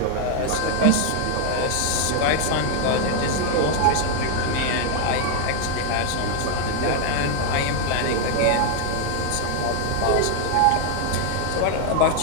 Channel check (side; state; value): both; different; correlation 0.00